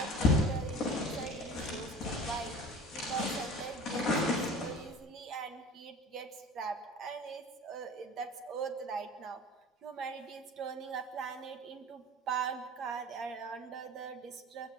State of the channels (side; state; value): both; normal; correlation 0.40